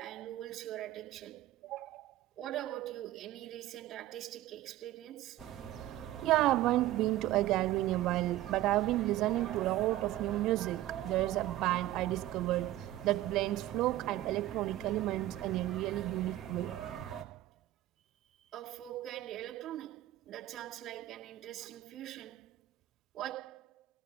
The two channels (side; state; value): left; quieter; 14.9 dB